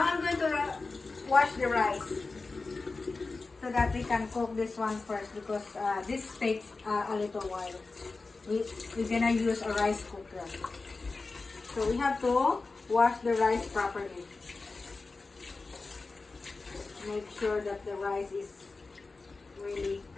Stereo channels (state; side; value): quieter; right; 3.8 dB